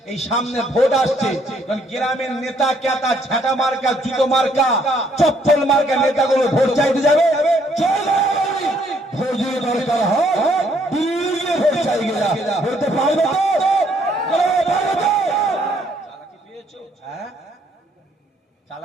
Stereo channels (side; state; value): both; normal; correlation 0.67